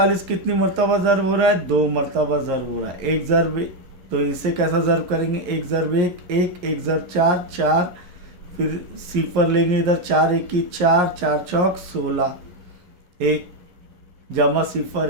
कितनी मरतबा ज़र्ब हो रहा है, 2 मरतबा ज़र्ब हो रहा है। एक ज़र्ब, तो इसे कैसा ज़र्ब करेंगे, 1 ज़र्ब 1 1, 1 ज़र्ब 4 4, फिर सिफर लेंगे इधर, 4 1 की 4, 4 चौक 16, 1 जमा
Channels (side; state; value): left; late; 11 ms